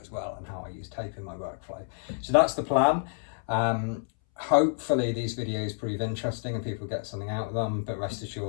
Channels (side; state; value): right; silent; 59 dB below the other